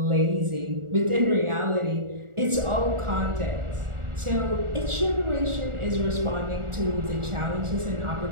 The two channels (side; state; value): left; late; 1.4 ms